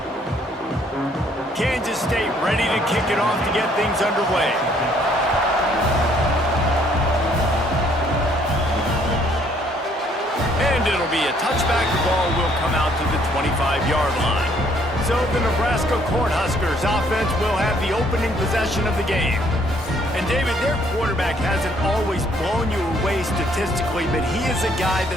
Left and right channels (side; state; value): both; normal; correlation 0.64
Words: Kansas State ready to kick it off to get things underway. And it'll be a touchback. The ball will come out to the 25-yard line. So the Nebraska Cornhuskers offense will have the opening possession of the game. And David, their quarterback hasn't always blown you away statistically, but he is a guy